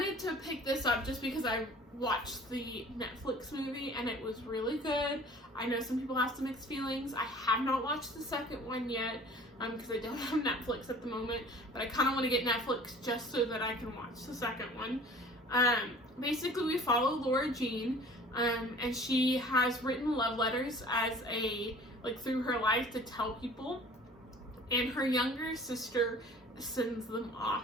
to pick this up just because I watched the Netflix movie and it was really good. I know some people have some mixed feelings. I have not watched the second one yet because I don't have Netflix at the moment, but I kind of want to get Netflix just so that I can watch the second one. Basically, we follow Laura Jean, and she has written love letters as like through her life to tell people, and her younger sister sends them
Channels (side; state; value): both; normal; correlation 0.47